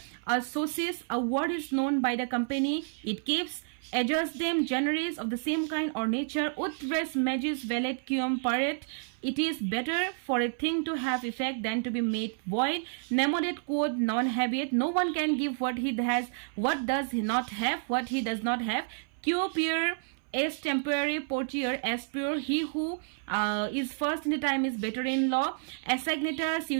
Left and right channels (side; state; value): left; silent; 56 dB below the other